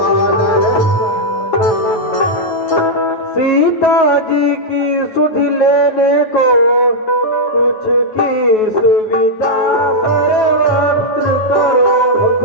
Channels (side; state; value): right; late; 9.2 ms